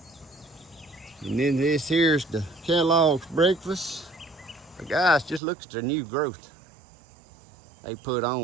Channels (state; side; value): drops out; left; at 5.4 s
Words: And then this here's the Kellogg's breakfast. But guys, just look at the new growth they put